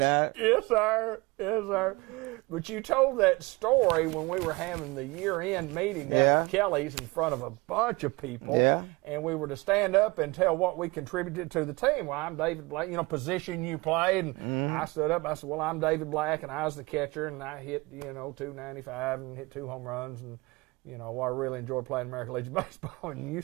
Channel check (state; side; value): quieter; left; 24.0 dB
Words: Yes, sir. Yes, sir. But you told that story when we were having the year-end meeting down at Kelly's in front of a bunch of people. Yeah. And we were to stand up and tell what we contributed to the team. Well, I'm David Black, position you played. And I stood up. I said, well, I'm David Black, and I was the catcher, and I hit, 295 and hit 2 home runs. And, I really enjoyed playing American Legion Baseball. And you